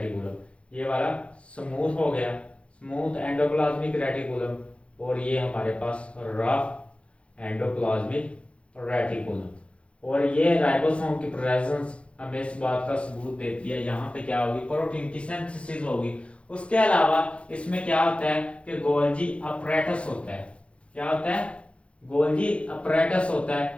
ये वाला स्मूथ हो गया, स्मूथ एंडोप्लाज्मिक रेटिकुलम। और ये हमारे पास रफ एंडोप्लाज्मिक रेटिकुलम। और ये राइबोसोम की प्रेजेंस हमें इस बात का सबूत देती है, यहाँ पे क्या होगी, प्रोटीन की सिंथेसिस होगी। उसके अलावा इसमें क्या होता है कि गोल्जी अपरेटस होता है। क्या होता है, गोल्जी अपरेटस होता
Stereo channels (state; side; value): late; right; 0.060 ms